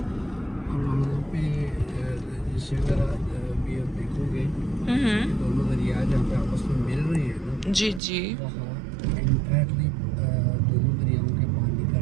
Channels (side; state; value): left; drops out; at 8.0 s